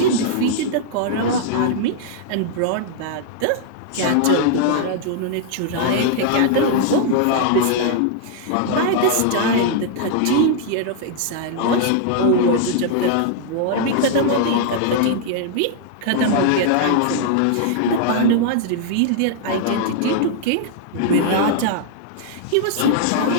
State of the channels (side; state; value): both; different; correlation -0.01